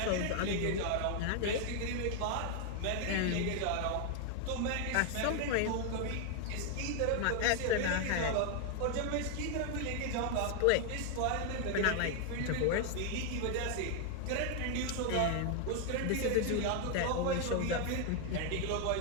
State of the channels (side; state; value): both; different; correlation 0.00